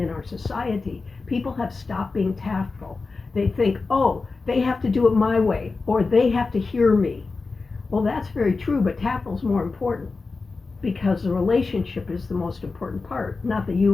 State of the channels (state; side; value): quieter; right; 4.0 dB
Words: our society. People have stopped being tactful. They think, oh, they have to do it my way, or they have to hear me. Well, that's very true, but tactful is more important because the relationship is the most important part, not the